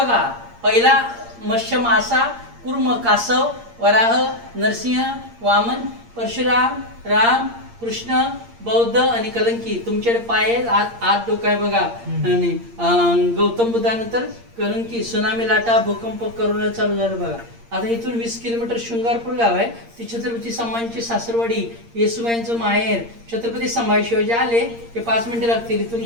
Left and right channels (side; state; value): left; late; 8.6 ms